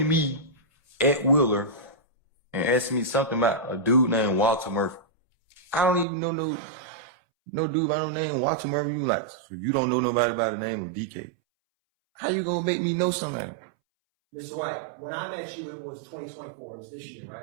me at Wheeler and asked me something about a dude named Walter Murphy. I don't even know no dude by no name Walter Murphy. You like, so you don't know nobody by the name of DK. How you gonna make me know somebody? Mr. White, when I met you, it was 2024. It was this year,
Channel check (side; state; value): left; drops out; at 6.1 s